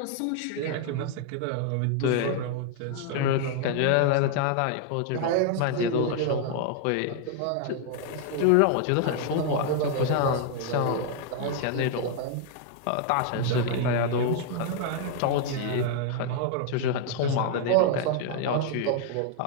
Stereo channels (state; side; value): different; both; correlation 0.00